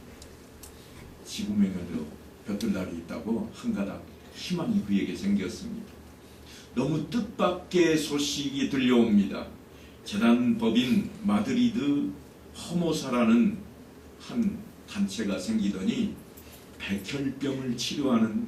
지구명에도 볕들 날이 있다고 한 가닥 희망이 그에게 생겼습니다. 너무 뜻밖의 소식이 들려옵니다. 재단법인 마드리드 허모사라는 한 단체가 생기더니 백혈병을 치료하는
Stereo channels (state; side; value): identical; both; correlation 1.00